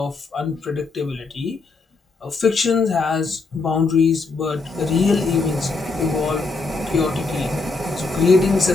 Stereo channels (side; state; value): right; quieter; 3.9 dB